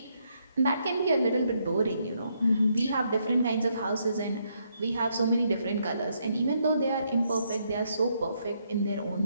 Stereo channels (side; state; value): both; inverted; correlation -0.75